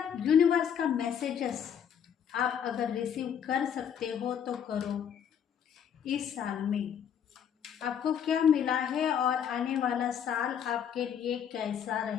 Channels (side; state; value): right; quieter; 8.4 dB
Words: यूनिवर्स का मैसेजेस आप अगर रिसीव कर सकते हो तो करो। इस साल में आपको क्या मिला है और आने वाला साल आपके लिए कैसा